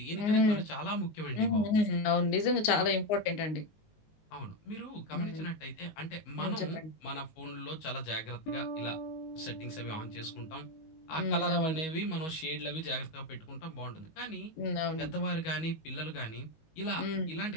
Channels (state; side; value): late; right; 19 ms